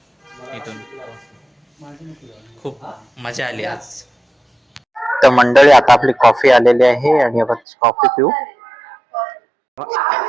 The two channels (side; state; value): left; drops out; at 7.6 s